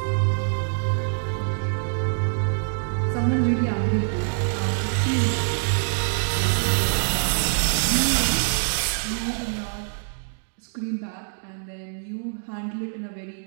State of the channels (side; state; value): left; silent; digital silence